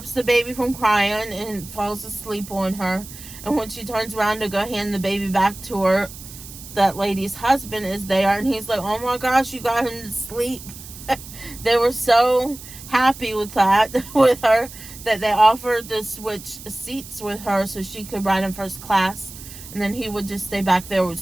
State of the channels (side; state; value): right; noise; hiss, 15 dB below the sound